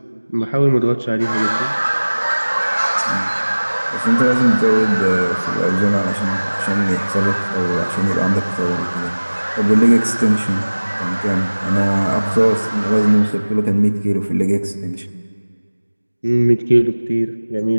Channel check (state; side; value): inverted; both; correlation -1.00